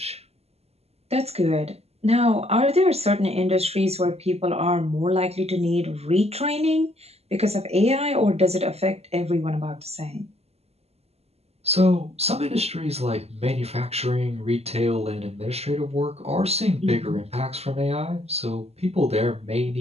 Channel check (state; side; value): late; left; 0.30 ms